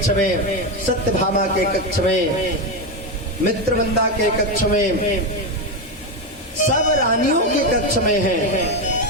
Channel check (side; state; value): both; normal; correlation 0.10